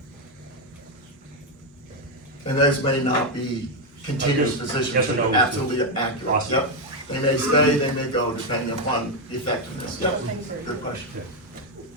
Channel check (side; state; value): both; normal; correlation 0.04